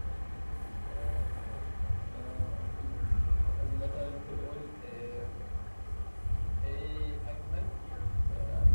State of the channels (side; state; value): both; inverted; correlation -1.00